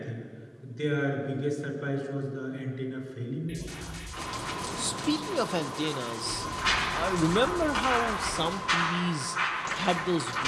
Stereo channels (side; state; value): both; identical; correlation 1.00